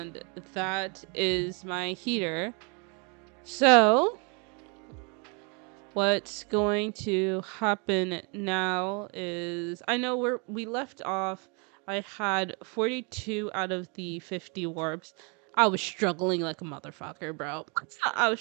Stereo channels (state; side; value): quieter; left; 34.3 dB